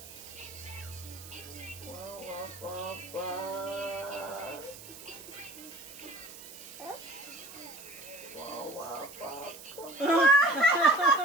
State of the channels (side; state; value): right; noise; hiss, 15 dB below the sound